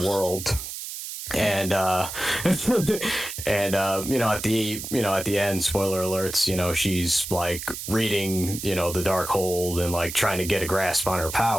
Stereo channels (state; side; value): noise; right; hiss, 8 dB below the sound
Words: world. And at the end, spoiler alerts, she's, like, reading, the Darkhold and, like, trying to get a grasp on her